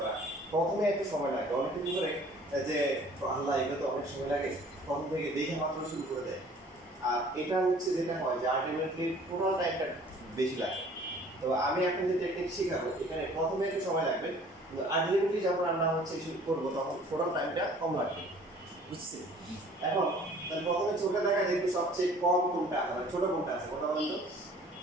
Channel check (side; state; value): both; normal; correlation 0.52